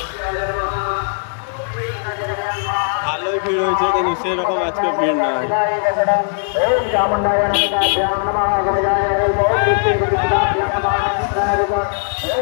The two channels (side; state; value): right; silent; digital silence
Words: ভালোই ভিড় হয়েছে, কিন্তু সেরকম আজকে ভিড় নাই।